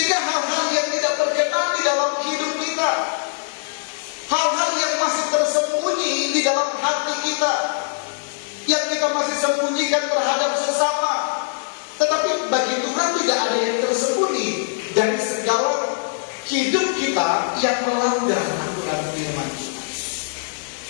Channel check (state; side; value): silent; right; digital silence